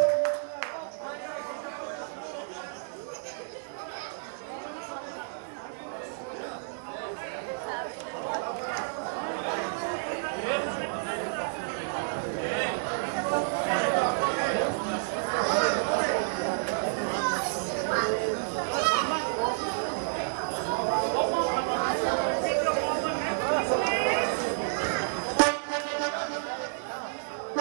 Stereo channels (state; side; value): silent; left; digital silence